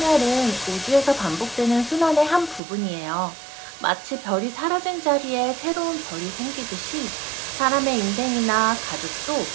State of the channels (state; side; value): drops out; left; at 2.6 s